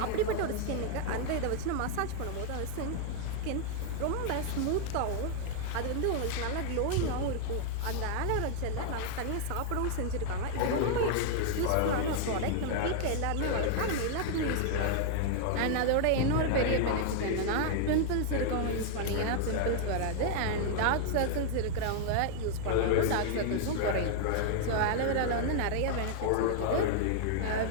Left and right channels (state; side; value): different; both; correlation 0.00